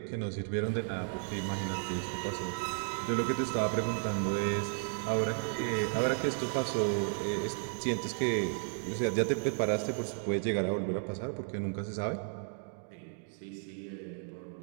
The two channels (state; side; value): silent; left; 55 dB below the other